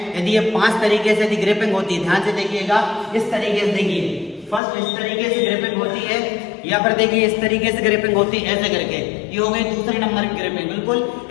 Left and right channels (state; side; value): drops out; right; at 4.6 s